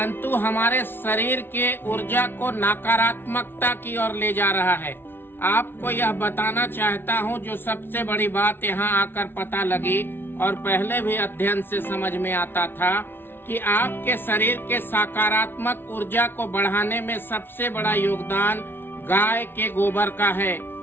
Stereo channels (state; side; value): late; right; 0.10 ms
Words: हमारे शरीर के ऊर्जा को नकारात्मकता की ओर ले जा रहा है। आपको यह बताना चाहता हूँ, जो सबसे बड़ी बात यहाँ आकर पता लगी और पहले भी अध्ययन से समझ में आता था कि आपके शरीर के सकारात्मक ऊर्जा को बढ़ाने में सबसे बड़ा योगदान गाय के गोबर का है।